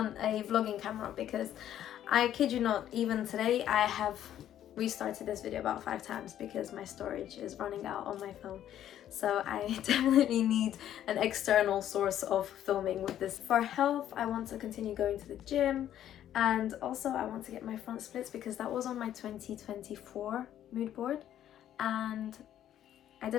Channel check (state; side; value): quieter; right; 11.2 dB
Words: a vlogging camera because I kid you not, even today I have restarted this video about 5 times because my storage is running out on my phone. So I definitely need an external source of filming with this. For health, I want to continue going to the gym, and also I want to get my front splits because that was on my 2024 mood board and I